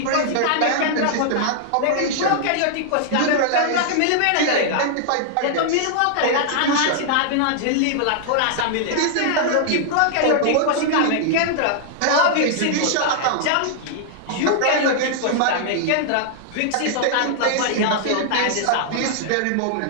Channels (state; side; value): different; both; correlation -0.01